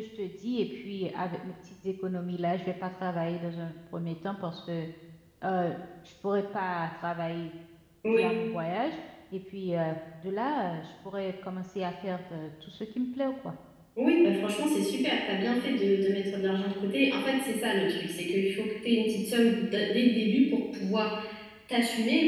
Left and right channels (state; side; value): identical; both; correlation 1.00